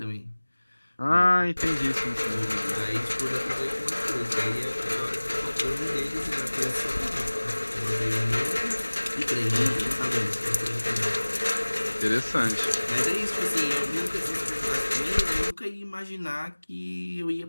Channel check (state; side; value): inverted; both; correlation -1.00